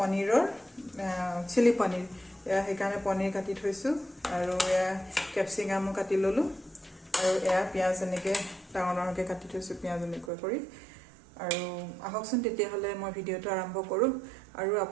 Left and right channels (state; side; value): drops out; left; at 10.3 s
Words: চিলি পনীৰ এয়া হেকানে পনীৰ কাটি থৈছো আৰু এয়া ক্যাপসিকাম কাটি ললো আৰু এয়া পিয়াজ এনেকে ডাঙৰকে কাটি থৈছো পিয়াজ এনেকৈ কৰি আৰু আহকচোন তেতিয়া হলে মই ভিডিওটো আৰম্ভ কৰো আৰু